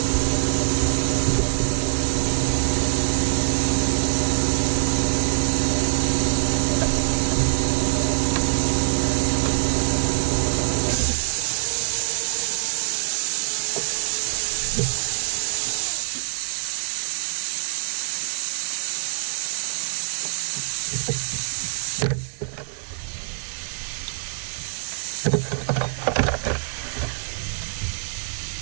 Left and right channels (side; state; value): left; silent; digital silence